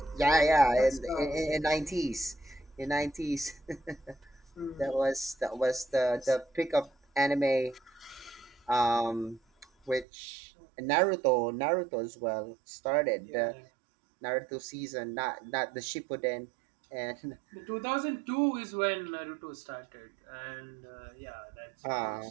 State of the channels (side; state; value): left; drops out; at 10.1 s